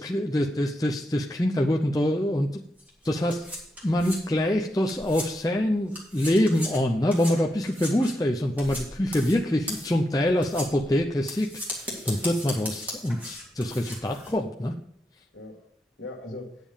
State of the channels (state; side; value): normal; both; correlation 0.84